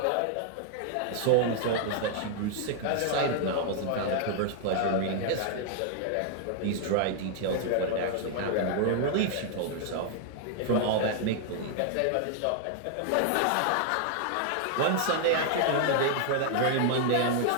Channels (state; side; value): different; both; correlation 0.00